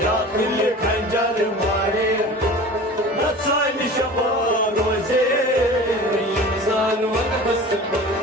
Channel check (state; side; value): normal; both; correlation 0.38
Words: يا كل خنجر ماري نتسان شبا روزي ينزال والحس